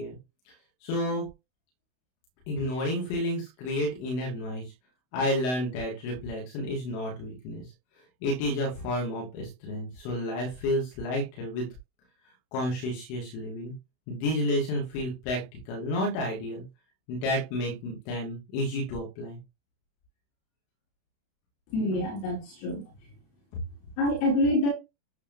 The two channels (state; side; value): late; right; 32 ms